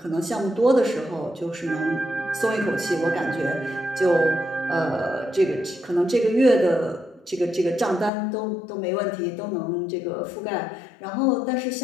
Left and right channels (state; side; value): drops out; right; at 8.1 s